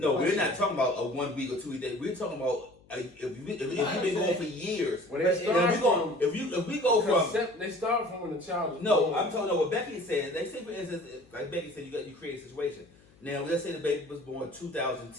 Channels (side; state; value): left; noise; hum, 28 dB below the sound